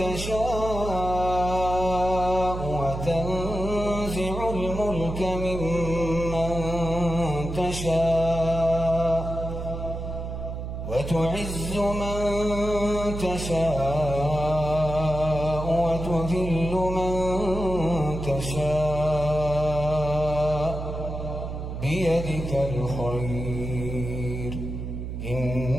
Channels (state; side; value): noise; right; hum, 6 dB below the sound